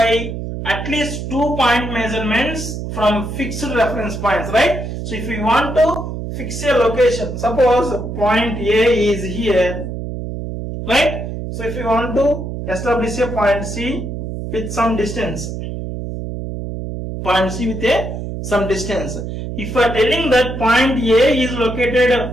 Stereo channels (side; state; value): right; noise; hum, 6 dB below the sound